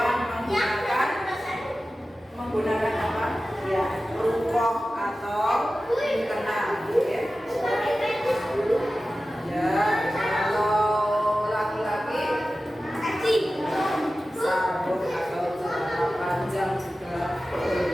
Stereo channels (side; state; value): both; normal; correlation 0.95